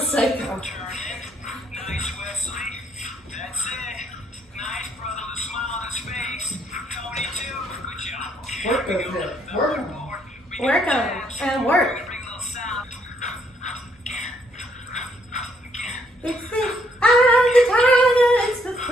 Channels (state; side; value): normal; both; correlation 0.70